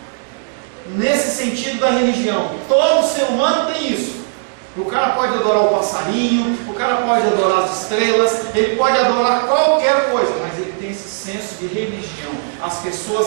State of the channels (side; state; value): left; silent; digital silence